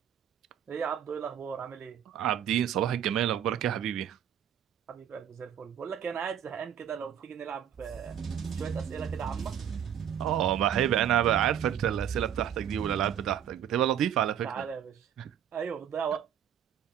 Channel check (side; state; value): left; quieter; 9.6 dB